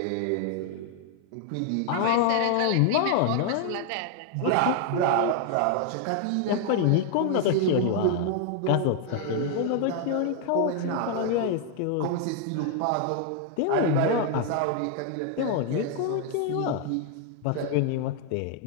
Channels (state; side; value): different; both; correlation 0.00